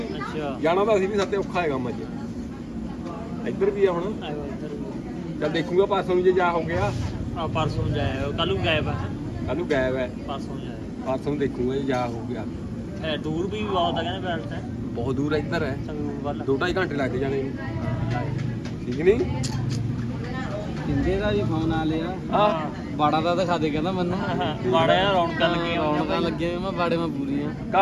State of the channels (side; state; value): both; identical; correlation 1.00